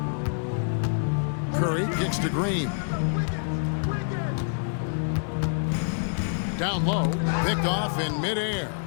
Curry kicks to Green. Down low, picked off in midair.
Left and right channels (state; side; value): silent; right; digital silence